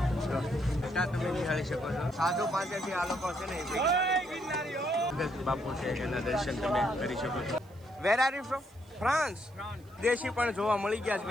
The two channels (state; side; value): noise; right; hiss, 29 dB below the sound